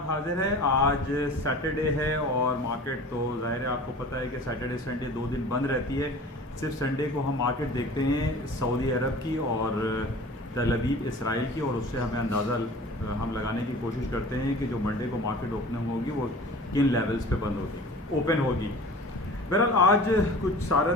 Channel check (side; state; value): both; normal; correlation 0.41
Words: حاضر ہے۔ آج سیٹرڈے ہے اور مارکیٹ تو ظاہر ہے آپ کو پتہ ہے کہ سیٹرڈے سنڈے 2 دن بند رہتی ہے۔ صرف سنڈے کو ہم مارکیٹ دیکھتے ہیں سعودی عرب کی اور تل ابیب اسرائیل کی، اور اس سے ہمیں اندازہ ہم لگانے کی کوشش کرتے ہیں کہ جو منڈے کو مارکیٹ اوپننگ ہوگی وہ کن لیولز پہ بند ہوگی، اوپن ہوگی۔ بہرحال آج کچھ